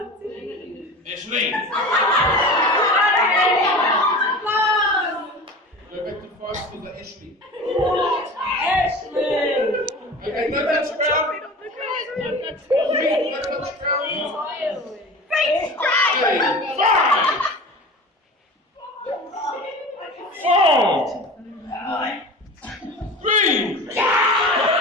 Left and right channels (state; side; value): normal; both; correlation 0.35